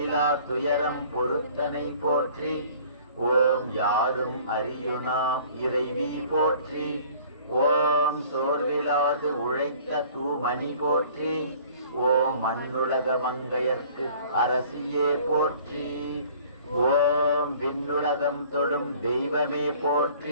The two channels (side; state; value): both; inverted; correlation -0.52